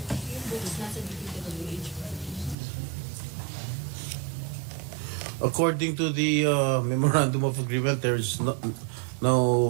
According to the memorandum of agreement, there is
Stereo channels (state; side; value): drops out; left; at 2.6 s